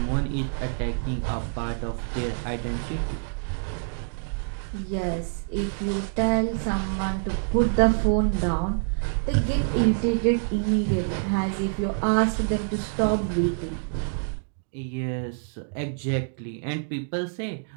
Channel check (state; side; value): silent; left; digital silence